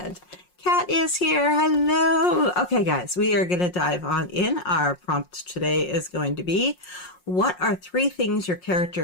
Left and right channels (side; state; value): right; late; 5.5 ms